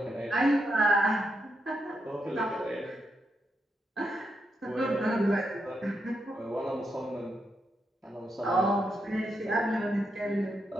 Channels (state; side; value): normal; both; correlation 0.82